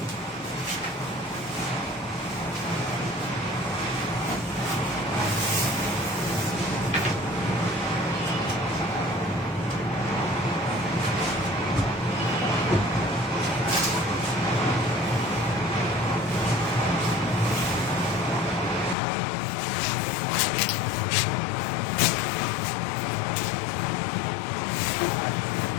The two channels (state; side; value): drops out; right; at 18.9 s